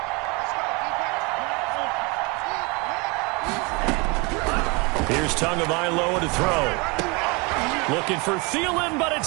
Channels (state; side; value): quieter; left; 27.9 dB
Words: Here's Tagovailoa to throw. Looking for Thielen, but